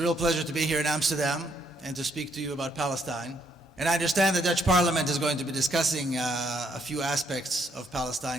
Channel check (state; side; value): normal; both; correlation 0.72